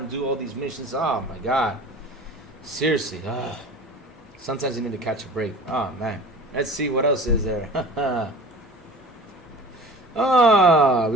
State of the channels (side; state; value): both; normal; correlation 0.40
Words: do all these missions. Oh my God, seriously. Sometimes you need to catch a break. Oh man, let's see what else is there.